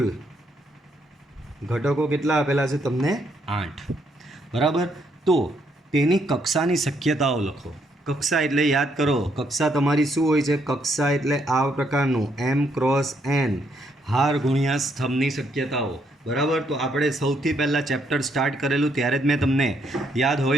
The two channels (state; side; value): normal; both; correlation 0.73